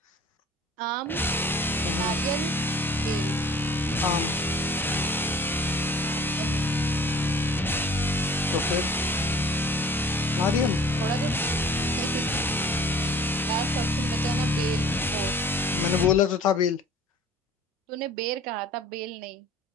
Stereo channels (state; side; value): normal; both; correlation 0.48